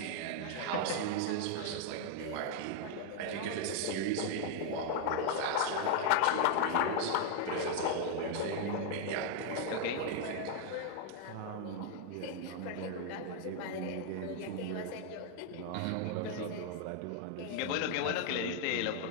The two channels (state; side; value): different; both; correlation 0.00